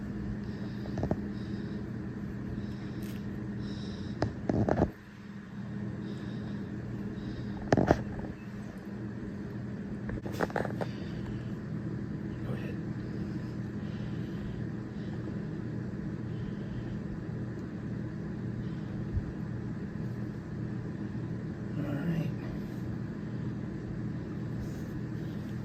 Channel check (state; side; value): identical; both; correlation 1.00